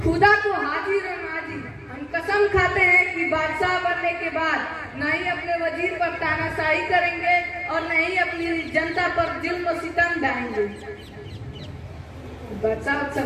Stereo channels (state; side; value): identical; both; correlation 1.00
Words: खुदा को हाजिर और नाजिर, हम कसम खाते हैं कि बादशाह बनने के बाद न ही अपने वजीर पर तानाशाही करेंगे और न ही अपनी जनता पर जुल्म सितम ढाएंगे। बादशाह अच्छा